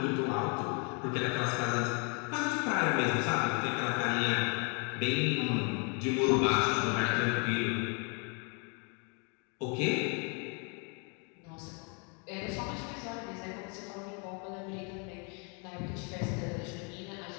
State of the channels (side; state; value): right; quieter; 35.6 dB